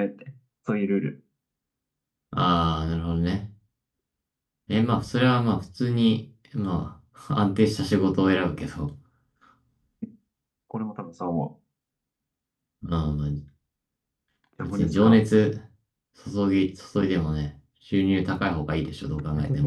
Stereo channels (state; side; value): identical; both; correlation 1.00